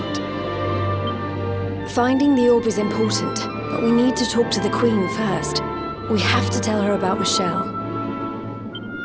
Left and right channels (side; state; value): both; identical; correlation 1.00